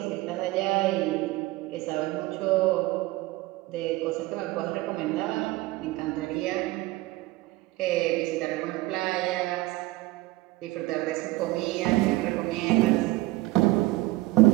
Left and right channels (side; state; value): left; quieter; 19.4 dB